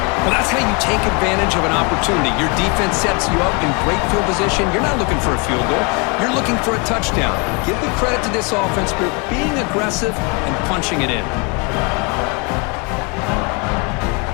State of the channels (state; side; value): quieter; right; 31.1 dB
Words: Well, that's how you take advantage of an opportunity. Your defense sets you up in great field position. You're not looking for a field goal. You're looking for a touchdown. Give the credit to this offense for being aggressive and punching it in.